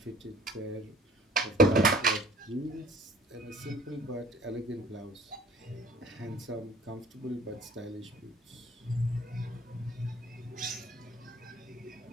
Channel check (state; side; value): normal; both; correlation 0.50